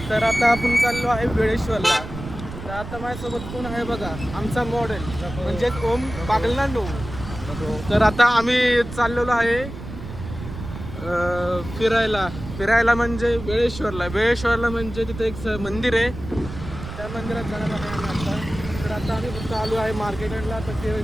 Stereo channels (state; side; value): noise; right; rumble, 10 dB below the sound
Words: तर आता आपण चाललो आहे वेळेश्वरला. तर आता माझ्यासोबत कोण आहे बघा, आमचा मॉडेल म्हणजेच ओम बागलांडो. तर आता आम्ही चाललेलो आहे फिरायला म्हणजे वेळेश्वरला म्हणजे तिथे एक मंदिर आहे, त्या मंदिरात जाणार आहे आम्ही आता. तर आता आम्ही फक्त आलो आहे मार्केटला. तर